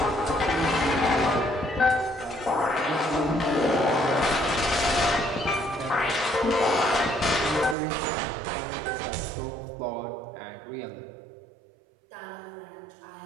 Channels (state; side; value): drops out; left; at 7.8 s